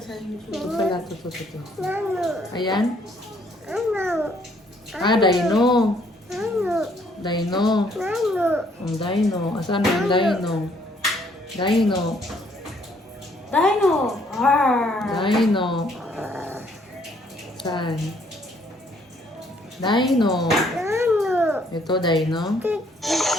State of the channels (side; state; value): both; normal; correlation 0.66